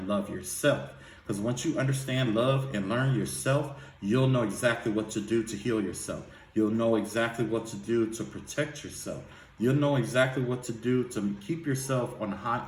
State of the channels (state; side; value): identical; both; correlation 1.00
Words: love yourself. Because once you understand, love, and learn yourself, you'll know exactly what to do to heal yourself. You'll know exactly what to do to protect yourself. You'll know exactly what to do to keep yourself on a high